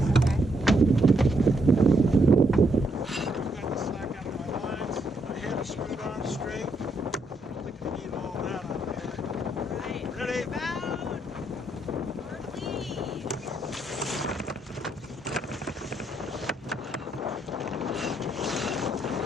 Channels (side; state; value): both; normal; correlation 0.76